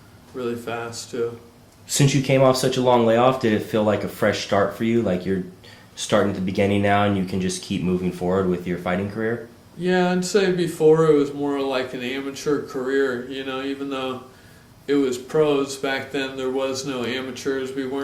really fast too. Since you came off such a long layoff, did it feel like a fresh start for you? Like you're starting at the beginning now and you can just keep moving forward with your fighting career? Yeah, I'd say before it was more like an amateur career, you know, even though it was pros back then, there was no amateurs. We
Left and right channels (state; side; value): identical; both; correlation 1.00